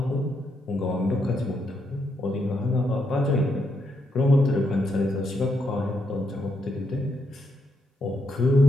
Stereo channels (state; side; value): normal; both; correlation 0.79